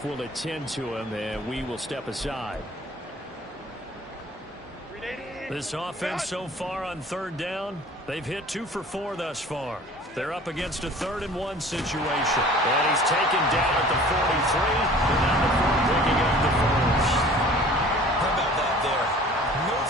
will attend to him, and we will step aside. This offense so far on 3rd down, they've hit 2 for 4 thus far. They're up against a 3rd and 1 situation. And he's taken down at the 43, and now the 4 picking up the 1st. How about that there? No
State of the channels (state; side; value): normal; both; correlation 0.47